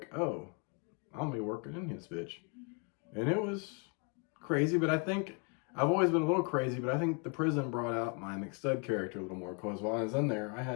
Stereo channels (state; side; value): quieter; right; 35.0 dB